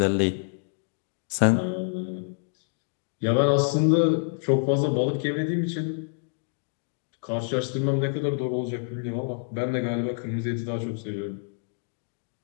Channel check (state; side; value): silent; right; digital silence